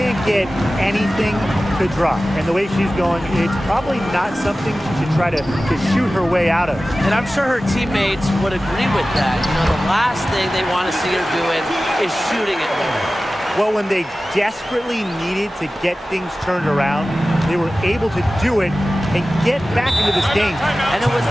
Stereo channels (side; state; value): both; normal; correlation 0.96